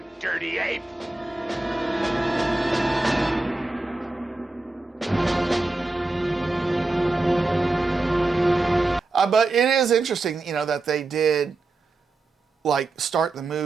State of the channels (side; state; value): left; quieter; 3.2 dB